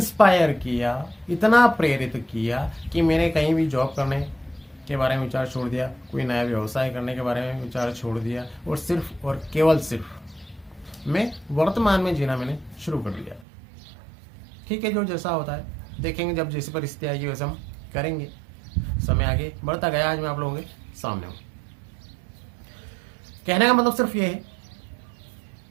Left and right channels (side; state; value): left; drops out; at 13.5 s